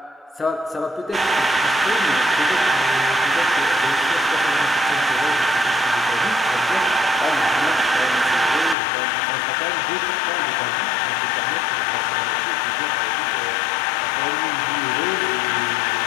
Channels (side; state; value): right; drops out; at 8.8 s